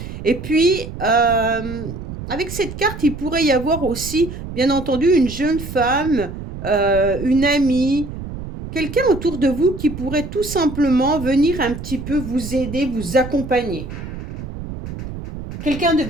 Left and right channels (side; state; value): right; noise; rumble, 9 dB below the sound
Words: Et puis, avec cette carte, il pourrait y avoir aussi, bien entendu, une jeune femme, une amie, quelqu'un autour de vous qui pourrait tout simplement venir un petit peu vous aider, vous accompagner. Quelqu'un de